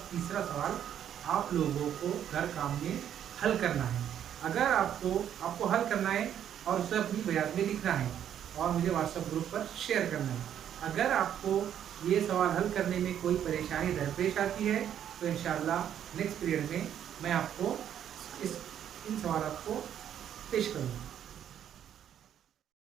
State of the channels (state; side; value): quieter; left; 9.8 dB